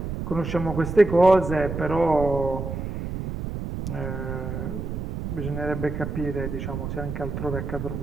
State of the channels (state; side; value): noise; right; rumble, 5 dB below the sound